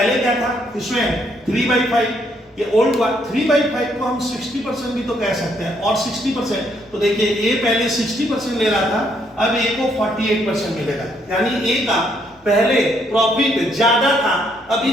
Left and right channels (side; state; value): both; normal; correlation 0.71